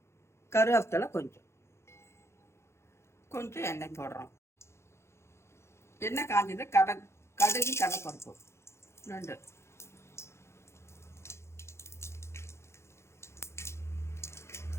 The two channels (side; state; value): right; late; 0.13 ms